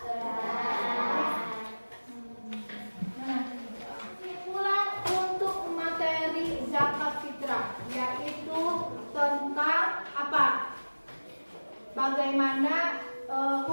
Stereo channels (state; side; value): inverted; both; correlation -1.00